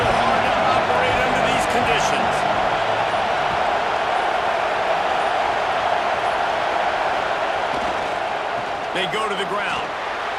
to operate under these conditions. They go to the ground.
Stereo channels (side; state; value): both; identical; correlation 1.00